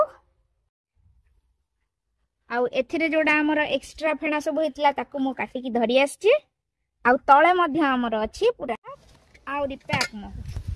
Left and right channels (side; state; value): both; identical; correlation 1.00